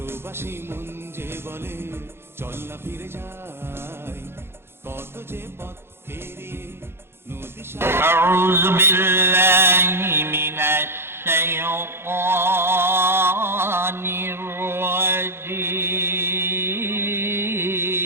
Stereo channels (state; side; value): late; left; 0.11 ms